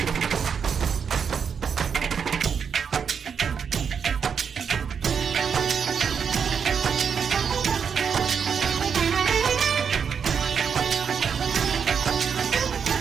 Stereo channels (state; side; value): quieter; left; 6.8 dB